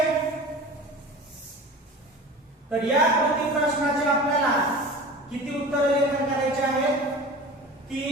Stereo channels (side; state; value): both; normal; correlation 0.36